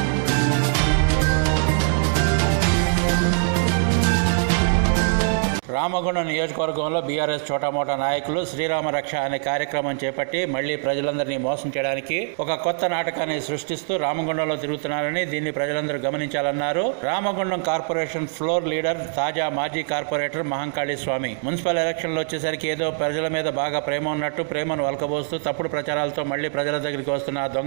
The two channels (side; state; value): left; silent; digital silence